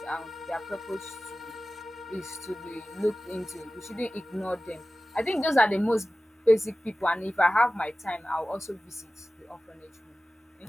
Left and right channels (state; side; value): normal; both; correlation 0.96